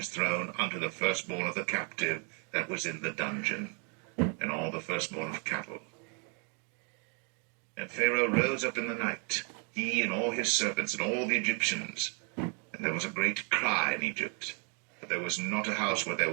throne unto the firstborn of the captive that was in the dungeon, and all the firstborn of cattle. And Pharaoh rose up in the night, he and all his servants and all the Egyptians, and there was a great cry in Egypt, but there was not a house where there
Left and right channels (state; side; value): quieter; left; 37.3 dB